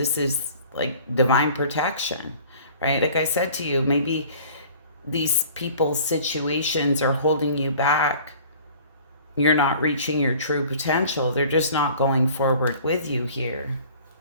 is like divine protection, right? Like I said to you, maybe these people's situations are holding you back. You're not reaching your true potential. They're just not going forward with you here.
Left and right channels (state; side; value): inverted; both; correlation -0.48